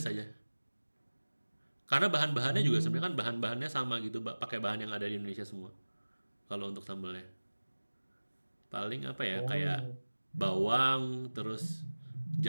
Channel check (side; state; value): both; inverted; correlation -1.00